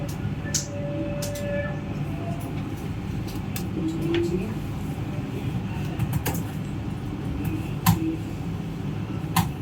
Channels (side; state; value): both; identical; correlation 1.00